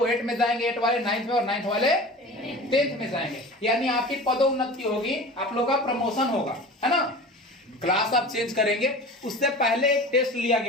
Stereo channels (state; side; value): normal; both; correlation 0.36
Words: 8 में जाएंगे, 8 वाले 9th में, और 9th वाले 10th में जाएंगे। यानी आपकी पदोन्नति होगी, आप लोगों का प्रमोशन होगा, है ना। क्लास आप चेंज करेंगे। उससे पहले एक टेस्ट लिया